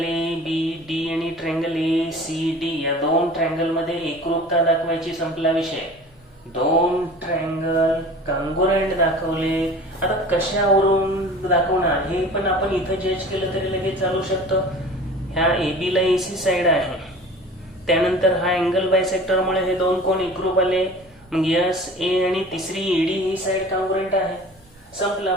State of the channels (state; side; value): noise; right; rumble, 29 dB below the sound